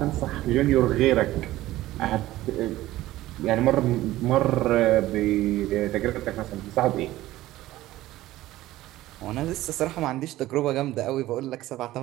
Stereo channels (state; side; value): quieter; left; 16.0 dB